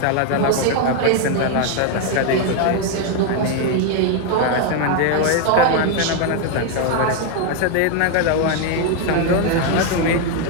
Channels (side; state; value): both; different; correlation 0.01